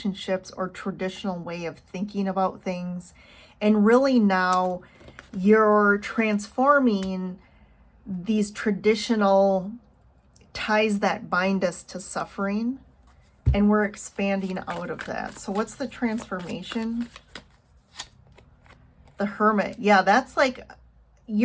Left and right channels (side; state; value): both; identical; correlation 1.00